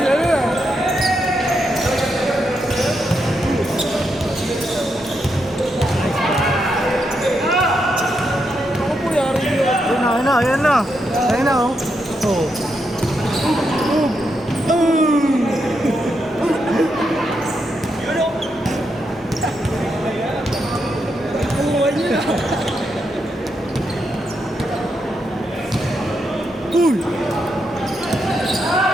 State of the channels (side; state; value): both; normal; correlation 0.82